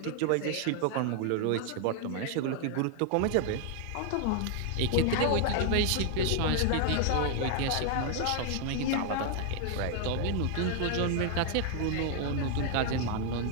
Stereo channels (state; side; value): different; both; correlation 0.00